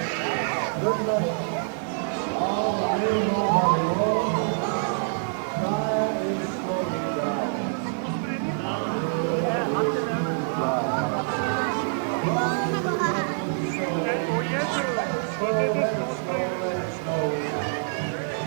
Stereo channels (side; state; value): left; silent; digital silence